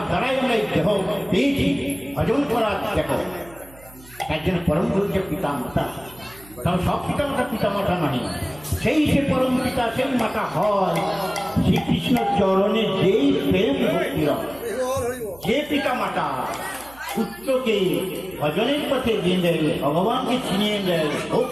দ্বারাই আমরা এই দেহ পেয়েছি ভজন করার দেখো, তার জন্য পরম গুরুকে পিতা মাতা। তাও সব পিতামাতা পিতামাতা নয়, সেই সে পরম পিতা সেই মাতা হয় শ্রীকৃষ্ণ চরণে যেই প্রেম ভক্তি রয়। যে পিতা মাতা পুত্রকে ভজনের পথে দিয়ে দেয়, ভগবানকে চিনিয়ে দেয়,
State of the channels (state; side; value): noise; right; hum, 23 dB below the sound